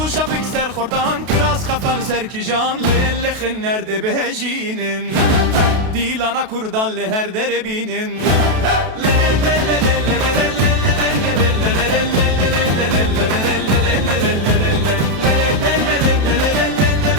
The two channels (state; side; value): late; left; 32 ms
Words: şapik ser khortan kiraz khafal ser kijan le khin nerede behjinin dilana kurdan le her derebinin le le le le le